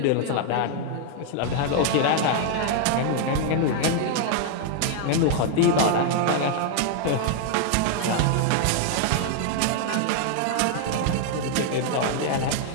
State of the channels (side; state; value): both; different; correlation 0.00